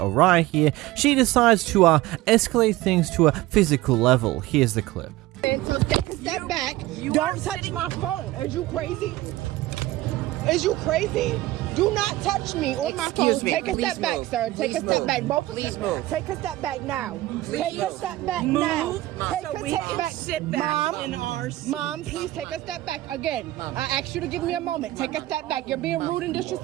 here, she decides to escalate things to a physical level. Here's the clip. So take a step back. Don't touch my phone. Is you crazy? Is you crazy? Do not touch me or my phone. Take a step back, sir. Take a step back. Both of you. Take a step back now. Take a step back now. Take a step back. Sit back in our seat. Mom, please take a step back again. I asked you to give me a moment. Take a step back. You're being rude and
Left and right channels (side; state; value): left; quieter; 17.1 dB